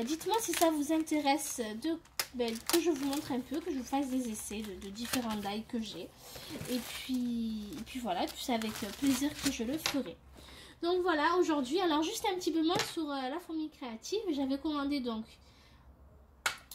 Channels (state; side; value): identical; both; correlation 1.00